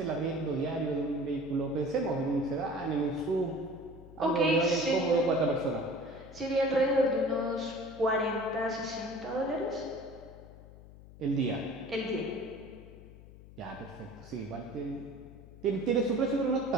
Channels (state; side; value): noise; left; hum, 18 dB below the sound